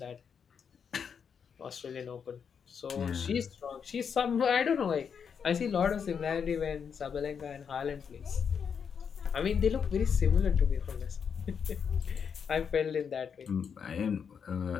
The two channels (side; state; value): right; quieter; 6.9 dB